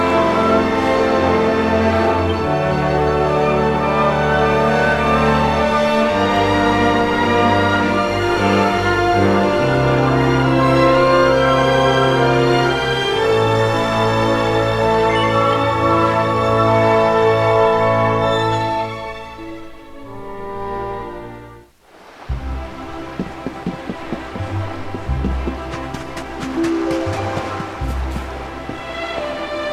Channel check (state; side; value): identical; both; correlation 1.00